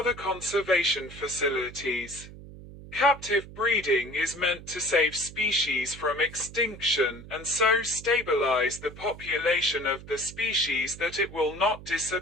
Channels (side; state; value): right; noise; hum, 16 dB below the sound